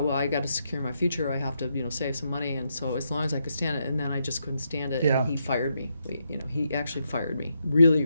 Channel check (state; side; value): inverted; both; correlation -0.81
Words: well, I got to secure my future. I have to, you know, save some money. And so as long as I could stand it, and then I just couldn't stand it. And he fired me. You know, he actually fired me, really